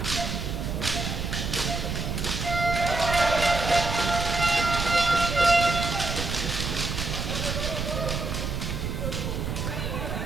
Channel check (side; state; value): right; noise; rumble, 3 dB below the sound